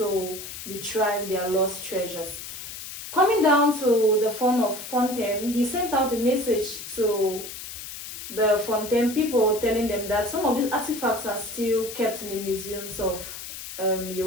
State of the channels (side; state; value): left; noise; hiss, 10 dB below the sound